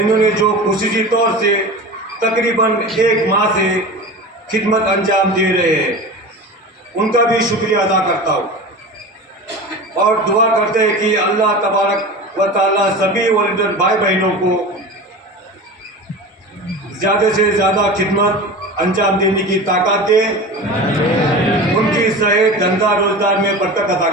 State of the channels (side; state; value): both; normal; correlation 0.32